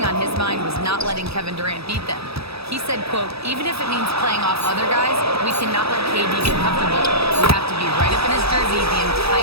on his mind was not letting Kevin Durant beat them. He said, quote, even if it means playing off other guys, we cannot let KD get comfortable. We have to be right up in his jersey the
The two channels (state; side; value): late; left; 0.77 ms